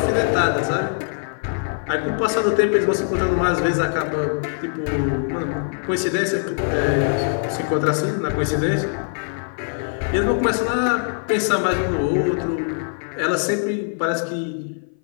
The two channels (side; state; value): right; silent; 57 dB below the other